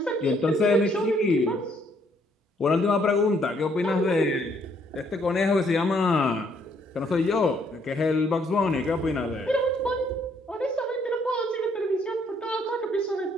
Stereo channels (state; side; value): normal; both; correlation 0.68